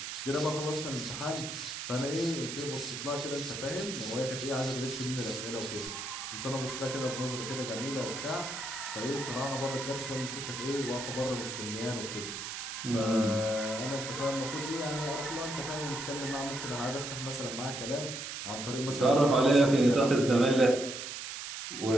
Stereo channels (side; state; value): right; noise; hiss, 6 dB below the sound